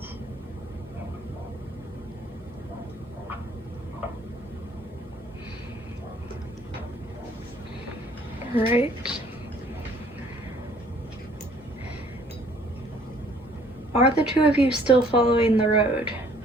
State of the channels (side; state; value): both; normal; correlation 0.59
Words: Right. Are the two of you still following the road?